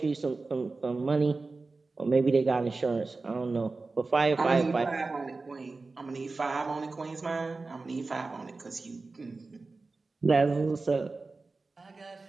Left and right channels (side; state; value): left; quieter; 3.7 dB